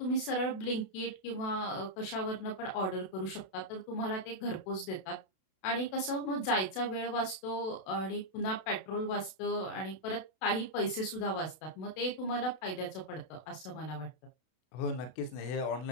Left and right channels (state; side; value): late; right; 32 ms